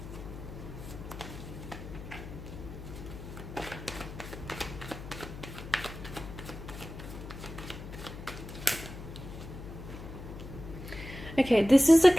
Okay, this is a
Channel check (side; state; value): left; noise; hum, 11 dB below the sound